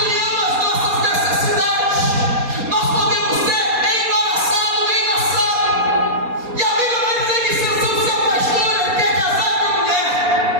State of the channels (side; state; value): left; late; 4.2 ms